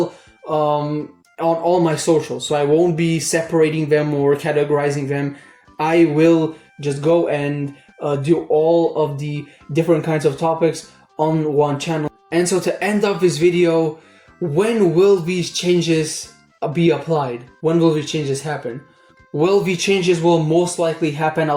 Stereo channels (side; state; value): both; identical; correlation 1.00